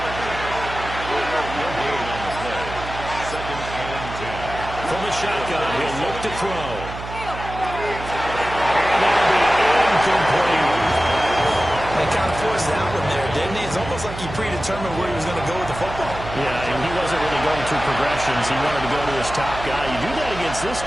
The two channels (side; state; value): right; noise; hum, 10 dB below the sound